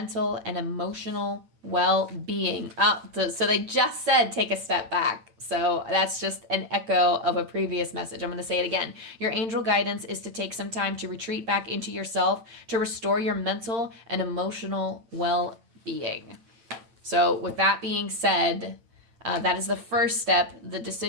and emotional well-being. So they just said take a step back. So that's just an echo of a previous message. I'm going to say it again. Your angel guidance is to take some time to retreat back into yourself to restore your mental and emotional well-being. So with that being said, that is the first step. The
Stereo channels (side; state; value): left; late; 9.0 ms